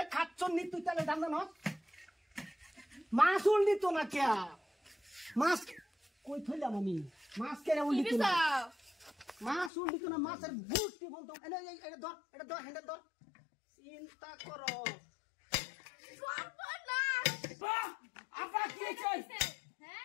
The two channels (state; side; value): drops out; right; at 9.7 s